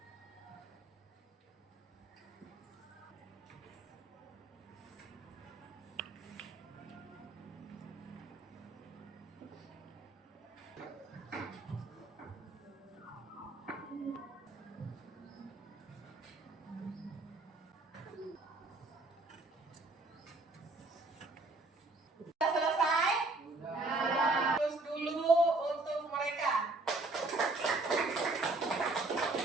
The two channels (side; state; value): left; quieter; 3.1 dB